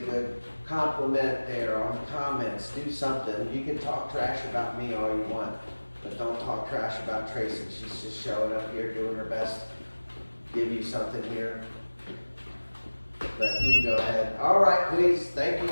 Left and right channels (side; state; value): both; inverted; correlation -1.00